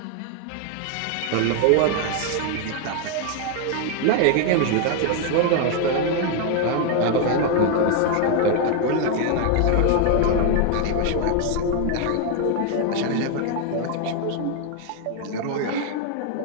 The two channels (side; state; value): both; different; correlation 0.00